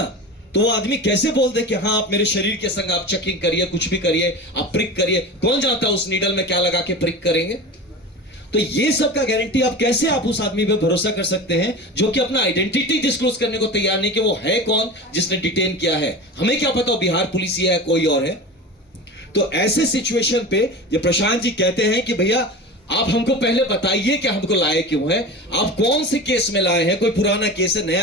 तो वो आदमी कैसे बोल दे कि हाँ आप मेरे शरीर के संग आप चेकिंग करिए, कुछ भी करिए, आप प्रिक करिए, कौन जानता है उस नीडल में क्या लगा के प्रिक करेंगे। तो ये सब का गारंटी आप कैसे आप उस आदमी पे भरोसा कर सकते हैं जो कि अपना आइडेंटिटी डिस्क्लोज करने को तैयार नहीं कि वो है कौन जिसने डिटेन किया है। हमें क्या पता बिहार पुलिस ही है कोई और है। तो ऐसे सिचुएशन पे ये प्रशांत जी कहते हैं कि भैया आप हमको पहले बताइए कि हमको लाए क्यों है, आप कौन से केस में लाए हैं, कोई पुराना केस है,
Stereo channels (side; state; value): both; normal; correlation 0.30